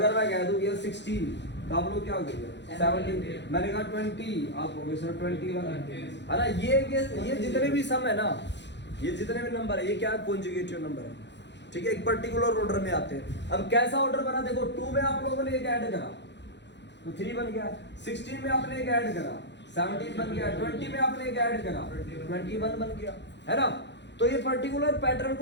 मैं कह दूं ये 16 तो आप लोग क्या हो गए 17, मैंने कहा 20 आप हो गए सर 21, है ना। ये जितने भी सम है ना, ये जितने भी नंबर है, ये क्या कॉन्जुगेटिव नंबर है, ठीक है। एक पर्टिकुलर ऑर्डर में आते हैं। अब कैसा ऑर्डर बना, देखो 2 में आप लोगों ने एक ऐड करा तो 3 बन गया, 16 में आपने एक ऐड करा 17 बन गया, 20 में आपने एक ऐड करा 21 बन गया, है ना। तो ये पर्टिकुलर पैटर्न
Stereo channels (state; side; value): late; right; 0.51 ms